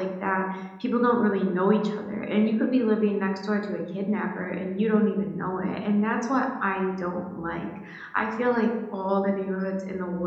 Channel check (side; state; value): both; identical; correlation 1.00